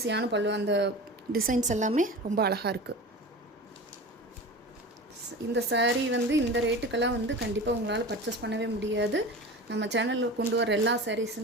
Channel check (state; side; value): normal; both; correlation 0.33